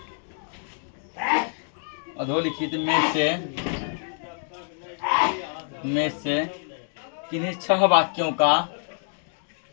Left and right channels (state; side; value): silent; right; 61 dB below the other